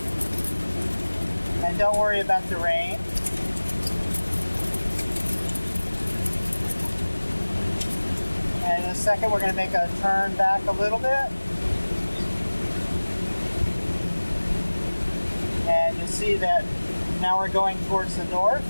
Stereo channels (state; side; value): inverted; both; correlation -1.00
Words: And don't worry about the rain. And in a second, we're going to make a turn back a little bit. And you'll see that now we're going towards the north.